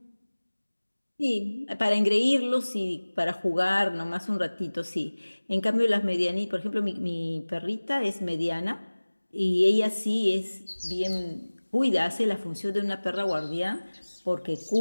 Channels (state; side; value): inverted; both; correlation -1.00